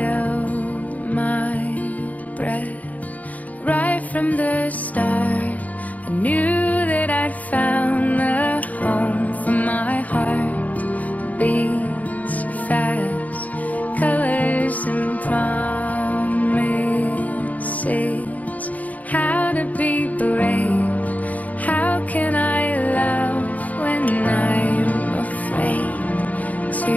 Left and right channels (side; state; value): right; late; 0.073 ms